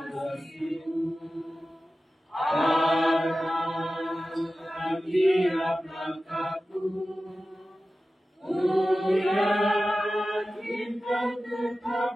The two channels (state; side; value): normal; both; correlation 0.95